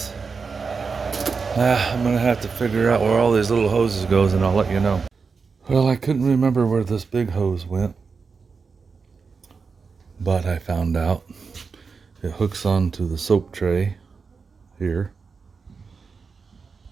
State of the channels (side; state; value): left; quieter; 5.0 dB